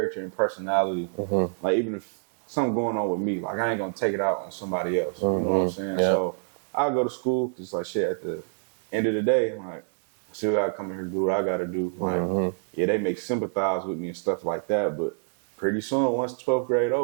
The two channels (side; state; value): left; silent; digital silence